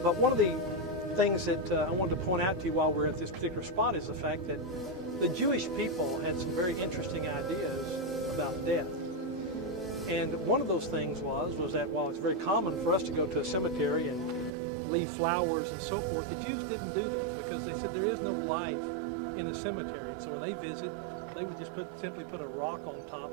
But one of the things that I wanted to point out to you while we're at this particular spot is the fact that the Jewish people had some very interesting ideas about death. And one of those things was that while it's very common for us to go to a cemetery and leave flowers and so forth, the Jews didn't do that because they said there is no life in a cemetery. And so when they visit, they would just simply put a rock on top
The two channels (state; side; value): drops out; left; at 14.5 s